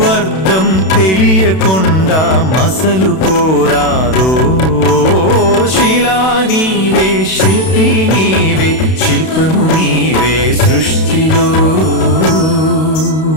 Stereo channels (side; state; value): right; late; 32 ms